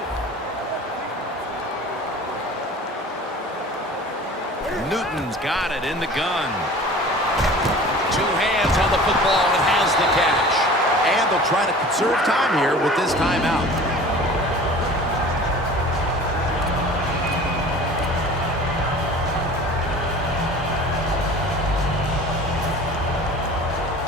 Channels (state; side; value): normal; both; correlation 0.42